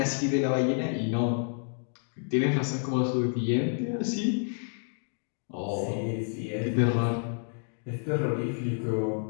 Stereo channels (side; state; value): right; silent; digital silence